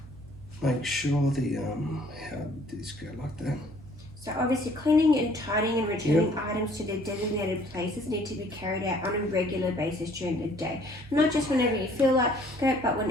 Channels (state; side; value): noise; right; hum, 18 dB below the sound